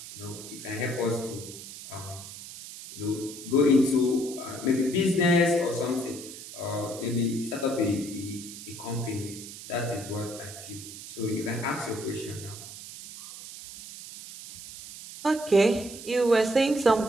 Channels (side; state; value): right; noise; hiss, 13 dB below the sound